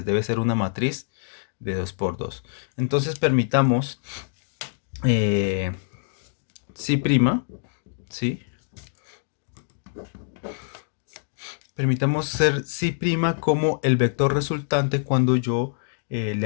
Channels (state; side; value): silent; right; digital silence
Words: Debe ser una matriz de 2 por 2. Entonces permitamos eh, si', ¿sí? Permitamos ser si' como el vector resultante cuando yo le